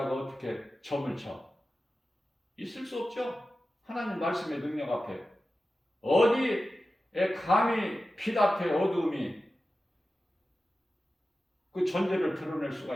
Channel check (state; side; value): normal; both; correlation 0.94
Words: 어떻게 점을 쳐? 있을 수 없죠. 하나님 말씀의 능력 앞에 어디에 감히 빛 앞에 어두움이 그 존재를 드러낼 수가